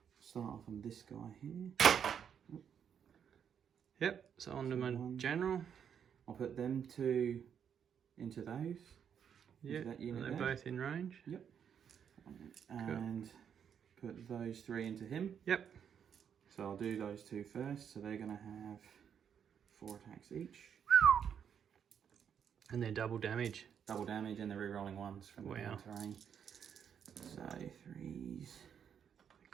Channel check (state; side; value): quieter; left; 8.0 dB